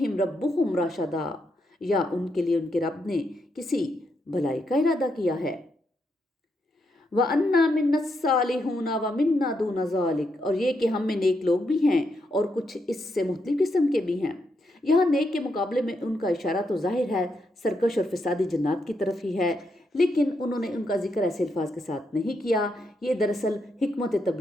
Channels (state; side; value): normal; both; correlation 0.81